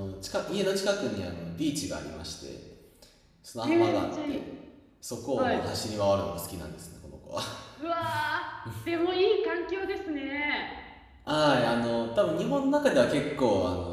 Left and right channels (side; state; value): both; identical; correlation 1.00